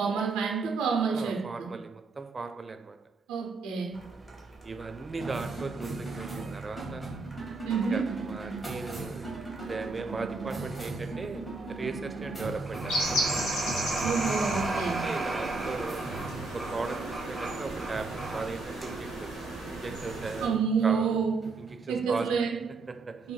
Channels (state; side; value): quieter; left; 3.7 dB